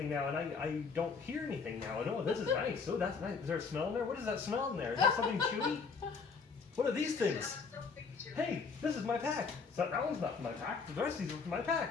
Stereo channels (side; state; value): right; quieter; 5.1 dB